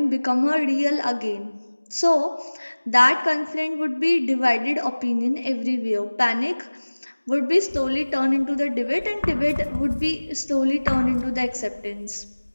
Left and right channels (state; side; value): inverted; both; correlation -1.00